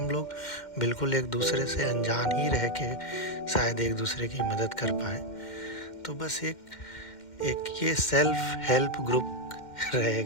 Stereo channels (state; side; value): late; right; 2.1 ms